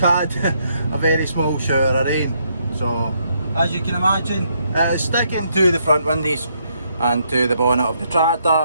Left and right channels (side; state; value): both; inverted; correlation -0.74